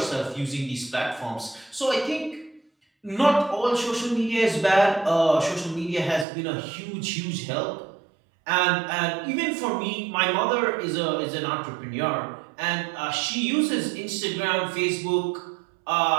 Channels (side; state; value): left; drops out; at 6.2 s